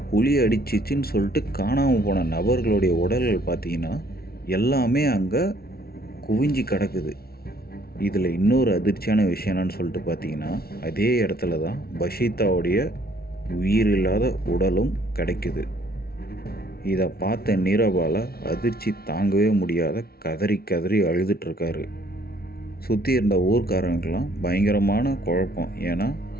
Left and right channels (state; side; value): late; right; 0.44 ms